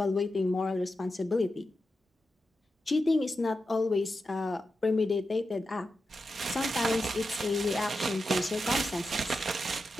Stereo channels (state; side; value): normal; both; correlation 0.89